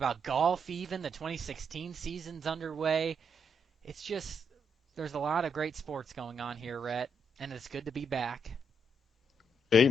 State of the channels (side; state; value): both; normal; correlation 0.78